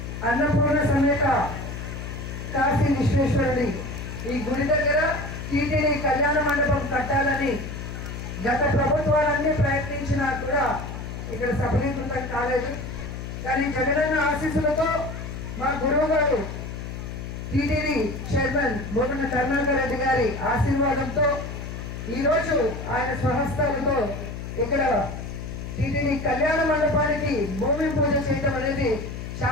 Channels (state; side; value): noise; left; hum, 8 dB below the sound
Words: అన్నపూర్ణ సమేత కాశీ విశ్వేశ్వరుడి ఈ గుడి దగ్గర టీటీడీ కళ్యాణ మండపం కట్టాలని గత ప్రభుత్వాలన్నీ ప్రయత్నించినా కూడా ఇక్కడ సఫలీకృతం కాలేదు. కానీ జగనన్న ఆశీస్సులతో మా గురువు గారు టీటీడీ చైర్మన్ బోగన కరుణాకర్ రెడ్డి గారి ఆశీర్వాదంతో ఈరోజు ఆయన స్వహస్తాలతో ఇక్కడ టీటీడీ కళ్యాణ మండపానికి భూమి పూజ చేయడం అనేది